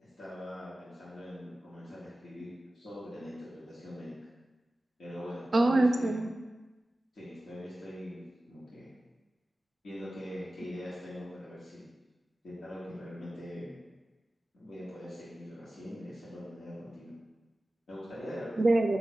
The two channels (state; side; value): normal; both; correlation 0.96